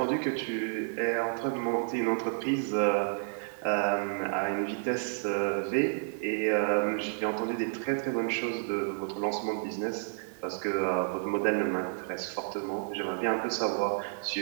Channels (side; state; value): left; silent; digital silence